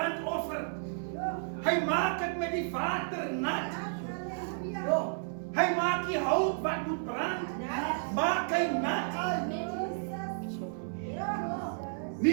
Hy maak dit met die water nat. Hy maak die hout wat moet brand, maak hy nat.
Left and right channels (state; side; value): silent; left; 56 dB below the other